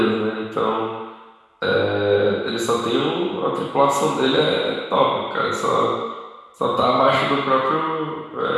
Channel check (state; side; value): identical; both; correlation 1.00